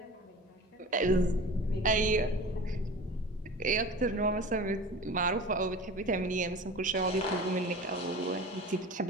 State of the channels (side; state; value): both; normal; correlation 0.37